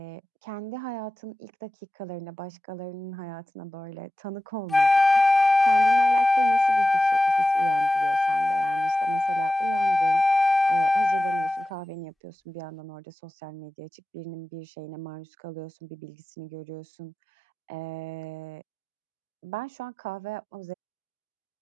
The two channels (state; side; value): normal; both; correlation 0.94